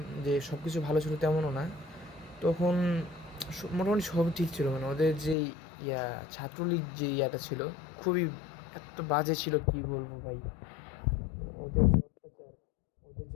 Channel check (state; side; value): drops out; right; at 5.4 s